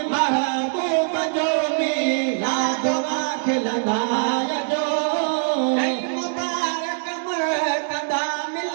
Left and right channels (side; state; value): left; silent; digital silence